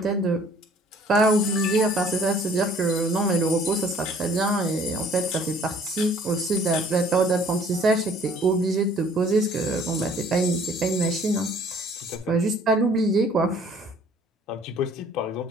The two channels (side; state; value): both; normal; correlation 0.56